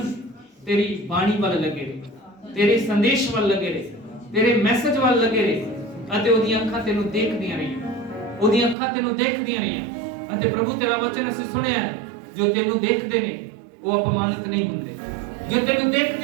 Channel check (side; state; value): left; drops out; at 8.8 s